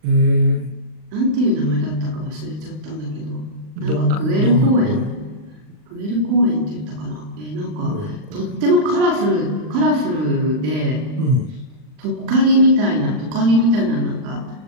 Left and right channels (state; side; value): late; left; 39 ms